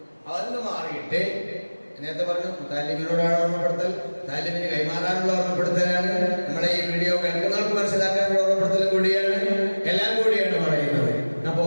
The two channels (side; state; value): both; inverted; correlation -1.00